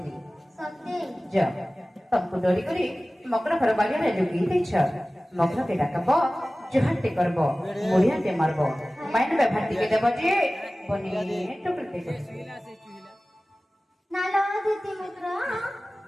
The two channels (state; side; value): normal; both; correlation 0.97